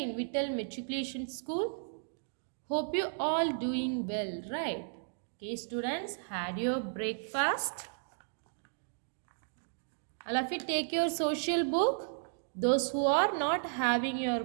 in Vittal Matriculation School. Hope you all doing well, right? Okay, students, had your breakfast? All of you take your social book. Those who are not having your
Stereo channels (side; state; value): left; silent; digital silence